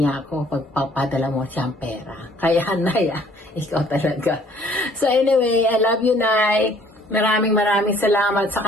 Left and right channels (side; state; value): both; normal; correlation 0.58